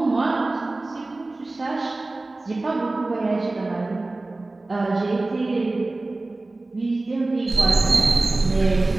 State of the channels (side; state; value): left; quieter; 3.1 dB